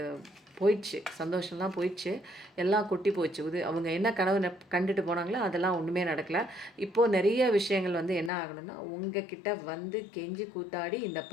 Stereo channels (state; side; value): drops out; right; at 8.3 s